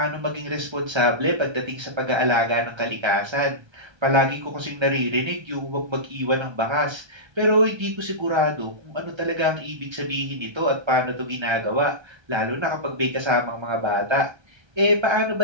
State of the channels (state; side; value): late; left; 1.3 ms